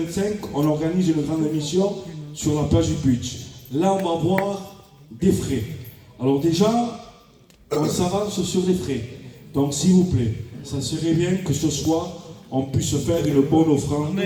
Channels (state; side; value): identical; both; correlation 1.00